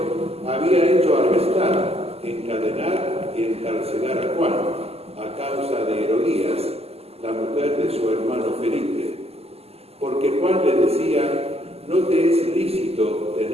había hecho arrestar, encadenar y encarcelar a Juan a causa de Herodías, la mujer de su hermano Felipe, porque Juan le decía: no te es lícito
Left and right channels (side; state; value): left; late; 0.29 ms